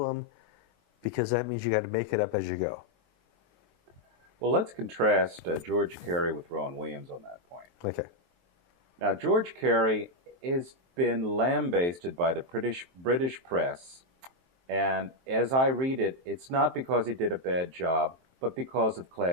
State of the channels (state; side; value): late; left; 23 ms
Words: because that means you got to make it up as you go. Well, let's contrast George Carey with Rowan Williams on that point. Okay. Now, George Carey has been lambasted by the British press, and as I read it, it's not because he did a bad job, but because of